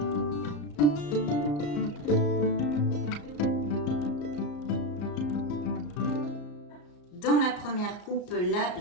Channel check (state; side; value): late; right; 34 ms